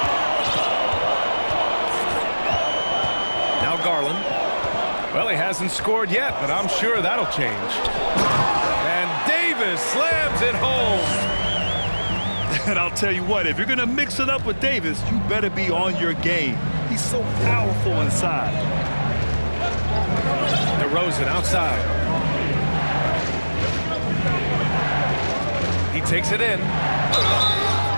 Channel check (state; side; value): inverted; both; correlation -1.00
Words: Now Garland. Well, he hasn't scored yet, but I'm sure that'll change. And Davis slams it home. And I'll tell you what, if you're going to mix it up with Davis, you better be on your game. He's so powerful inside. DeRozan outside. He takes it in.